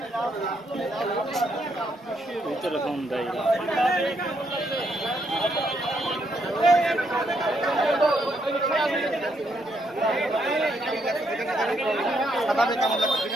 ভিতরে ফোন দেয়।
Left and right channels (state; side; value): normal; both; correlation 0.75